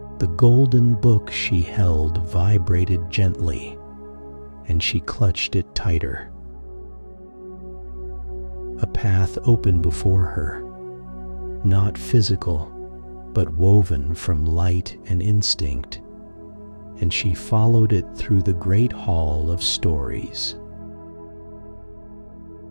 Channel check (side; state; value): both; inverted; correlation -1.00